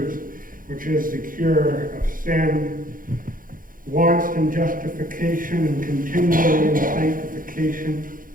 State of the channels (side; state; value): left; late; 0.40 ms